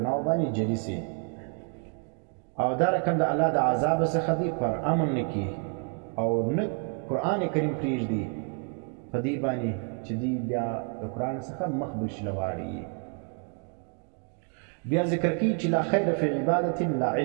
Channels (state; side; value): quieter; left; 36.7 dB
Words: باندې جری سي او دا رقم د الله د عذاب څخه دی پر امن نکی او نه قرآن کریم پریږدي په دې باندې چې دی بیا د قرآن څخه مخ بشلواړي بیا ذکر کی چې لا خیر فی عبادت لا